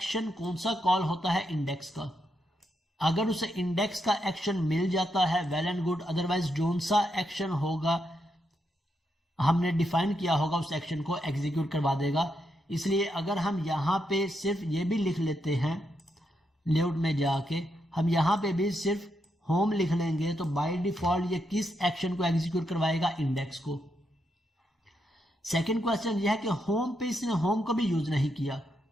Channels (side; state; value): both; normal; correlation 0.81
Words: कौन सा कॉल होता है? इंडेक्स का। अगर उसे इंडेक्स का एक्शन मिल जाता है well and good, otherwise zone सा एक्शन होगा हमने डिफाइन किया होगा उस एक्शन को एग्जीक्यूट करवा देगा। इसलिए अगर हम यहाँ पे सिर्फ ये भी लिख लेते हैं, लेआउट में जाके हम यहाँ पे भी सिर्फ होम लिख लेंगे तो बाय डिफॉल्ट ये किस एक्शन को एग्जीक्यूट करवाएगा? इंडेक्स को। सेकंड क्वेश्चन यह है कि होम पे इसने होम को भी यूज नहीं किया।